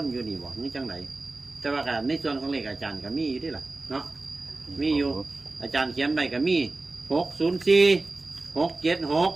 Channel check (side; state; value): left; quieter; 3.2 dB